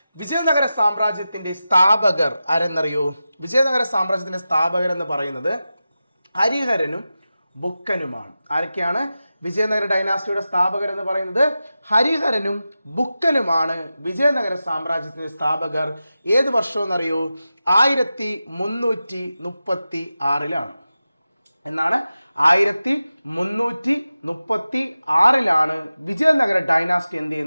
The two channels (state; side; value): inverted; both; correlation -0.93